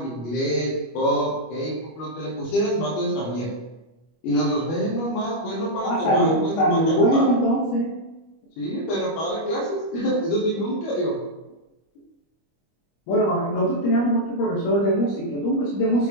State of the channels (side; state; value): right; late; 25 ms